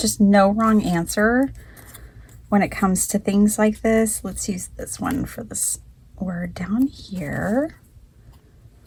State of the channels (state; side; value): identical; both; correlation 1.00